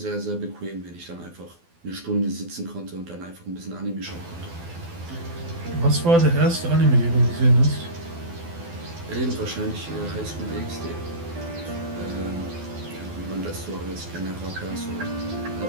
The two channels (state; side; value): late; left; 12 ms